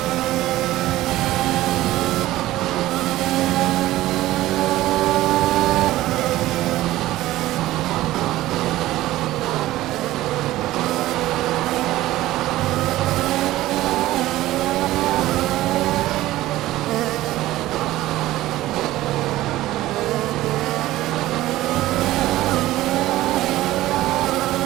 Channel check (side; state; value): left; quieter; 16.0 dB